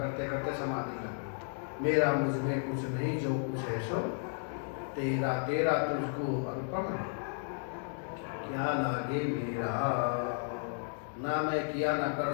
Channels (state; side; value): silent; right; 55 dB below the other